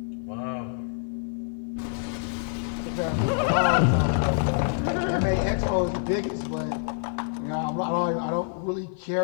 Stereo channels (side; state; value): right; silent; 55 dB below the other